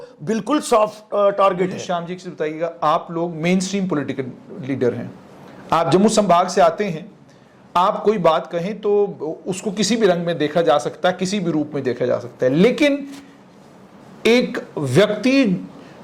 बिल्कुल सॉफ्ट टारगेट है। श्याम जी से बताइएगा, आप लोग मेन स्ट्रीम पॉलिटिकल लीडर हैं, आप जम्मू संभाग से आते हैं, आप कोई बात कहें तो उसको किसी भी रंग में देखा जा सकता है, किसी भी रूप में देखा जा सकता है, लेकिन एक व्यक्ति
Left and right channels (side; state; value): both; identical; correlation 1.00